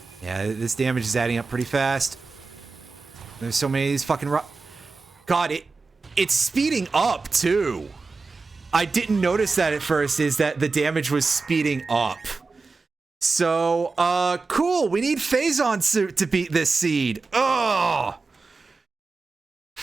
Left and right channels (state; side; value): quieter; left; 4.1 dB